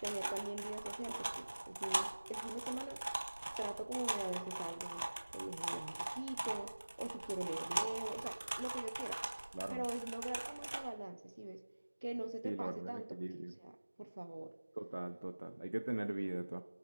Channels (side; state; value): both; inverted; correlation -1.00